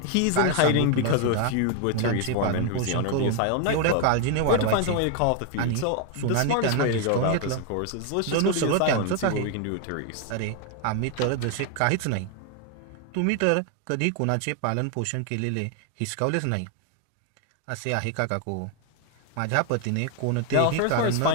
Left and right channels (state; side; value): different; both; correlation 0.01